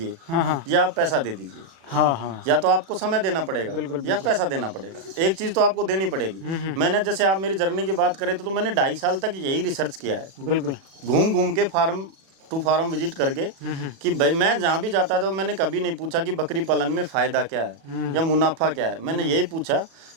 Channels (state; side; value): late; left; 36 ms